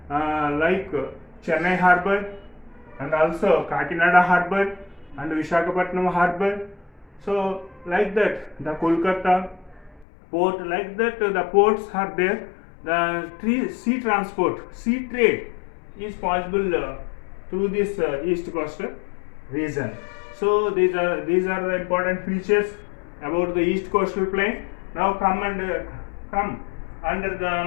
Chennai harbor, and also Kakinada harbor and Visakhapatnam harbor. So like that, the Kolkata port, like that, the ports are there. The sea transport, sea trade is possible through this east coastal region. So these are the important features about the east coastal plain. Now come under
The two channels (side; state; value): right; drops out; at 10.1 s